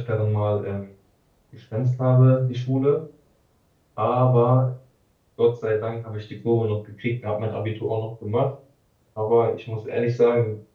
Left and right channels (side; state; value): both; identical; correlation 1.00